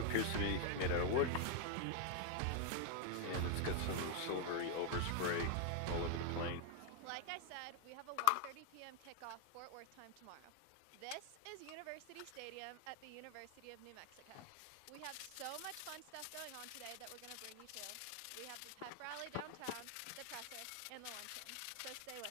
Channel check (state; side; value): different; both; correlation 0.00